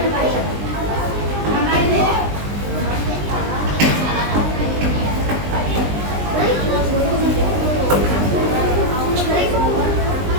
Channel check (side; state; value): left; late; 20 ms